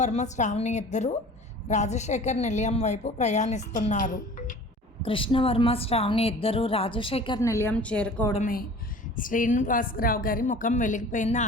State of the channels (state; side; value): normal; both; correlation 0.44